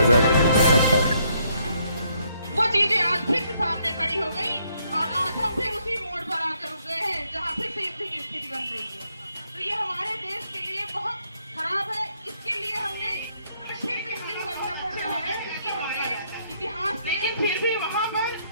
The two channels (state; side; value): inverted; both; correlation -0.71